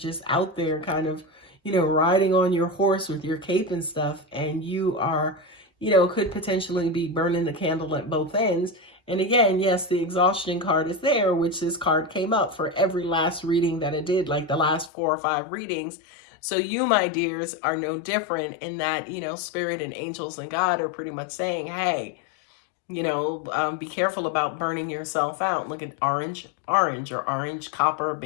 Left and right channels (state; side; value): drops out; right; at 14.9 s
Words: out there kind of, riding on your horse with your cape and stuff. And you are, could potentially be burning the candle at both ends. And again, yes, the exhaustion card is there, which this card came up for every last reading that I did, like the last 4 or 5 readings. So you, my dears, are no different in that, spirit and angels and God are pretty much saying, hey, be careful about burning yourself out. Look at orange or orange, copper,